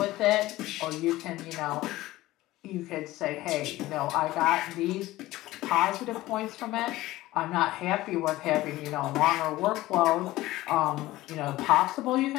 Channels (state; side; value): quieter; right; 17.1 dB